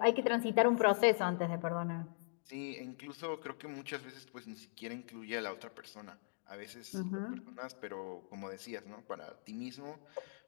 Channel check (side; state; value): right; silent; digital silence